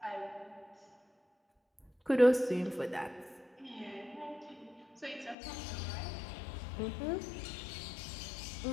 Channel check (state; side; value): drops out; right; at 5.4 s